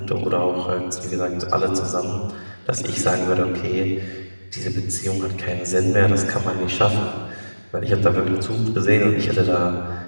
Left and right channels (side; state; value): both; inverted; correlation -1.00